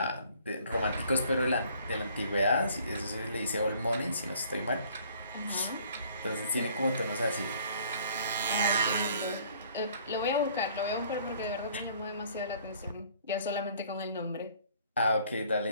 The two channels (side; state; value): both; inverted; correlation -0.57